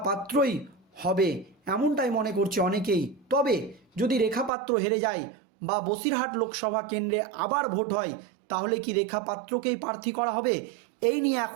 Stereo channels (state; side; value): drops out; left; at 4.5 s